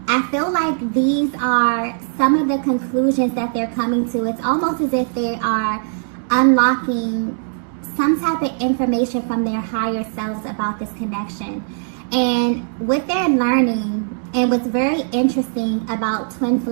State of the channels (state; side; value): silent; left; digital silence